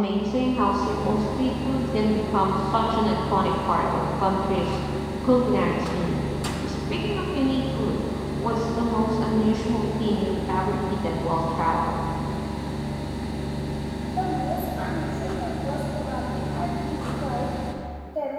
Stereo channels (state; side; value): identical; both; correlation 1.00